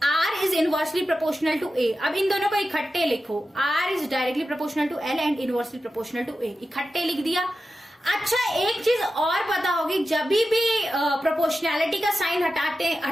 R is inversely proportional to A। अब इन दोनों को इकट्ठे लिखो, R is directly proportional to L and inversely proportional to A, इकट्ठे लिख दिया। अच्छा, एक चीज और पता होगी, जब भी प्रोपोर्शनैलिटी का साइन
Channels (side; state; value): both; normal; correlation 0.92